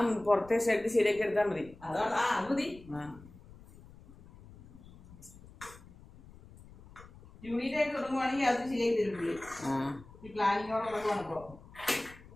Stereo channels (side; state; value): left; noise; rumble, 21 dB below the sound